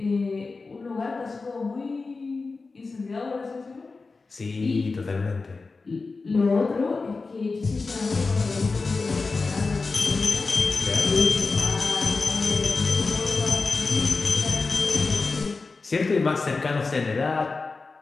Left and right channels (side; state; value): right; quieter; 4.0 dB